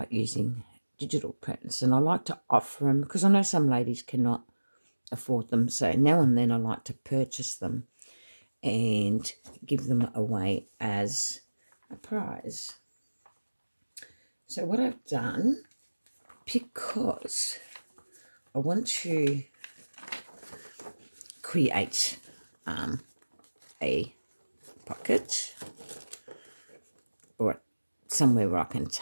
using digital prints, and I like to offer them because I know some ladies cannot afford them. So now and then I like to purchase them and give them away as a prize. So what I've done, because I want to create a pocket or somewhere where I can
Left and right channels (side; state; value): both; inverted; correlation -1.00